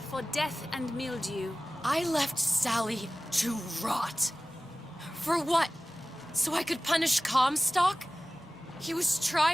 death and mildew. I left Sally to rot. For what? So I could punish Comstock? He was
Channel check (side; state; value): both; normal; correlation 0.96